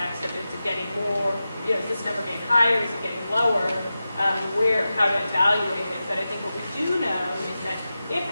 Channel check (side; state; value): both; inverted; correlation -0.93